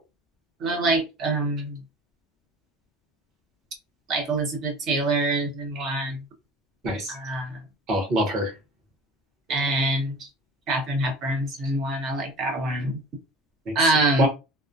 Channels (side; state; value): both; normal; correlation 0.41